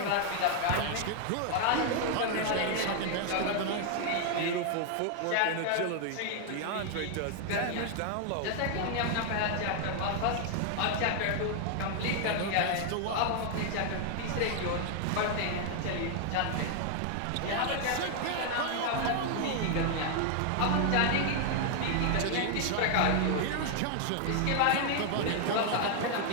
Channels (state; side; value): different; both; correlation 0.00